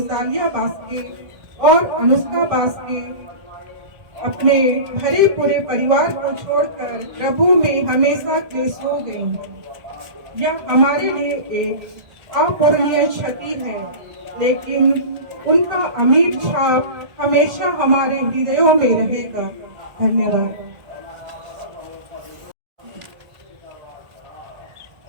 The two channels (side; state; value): left; late; 1.6 ms